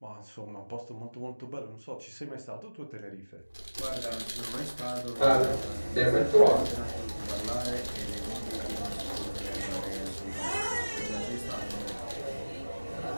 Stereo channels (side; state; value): both; inverted; correlation -1.00